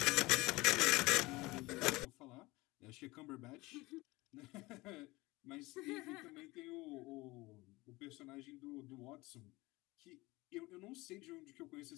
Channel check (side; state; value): right; quieter; 21.5 dB